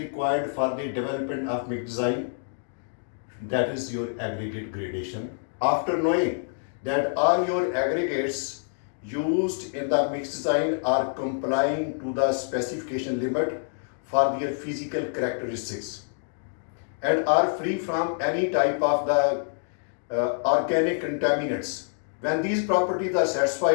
for the development of mix design? That is your aggregate gradation. After knowing that all your aggregates used in the mix design are complying to the specification limit for their physical characteristics and are free from any type of the organic contaminants. When these properties are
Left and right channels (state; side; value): silent; right; digital silence